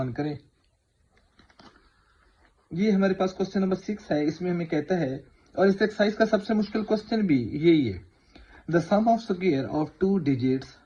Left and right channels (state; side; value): identical; both; correlation 1.00